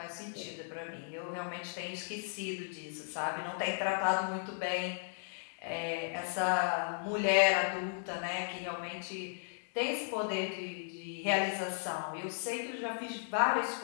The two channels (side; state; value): right; silent; digital silence